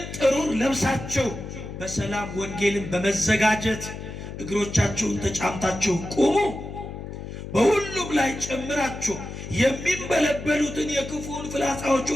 ጥሩር ለብሳችሁ በሰላም ወንጌልን በመዘጋጀት እግሮቻችሁን ተጫምታችሁ ቁሙ። በሁሉም ላይ ጨምራችሁ የሚንበለበሉትን የክፉን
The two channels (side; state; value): left; noise; hum, 9 dB below the sound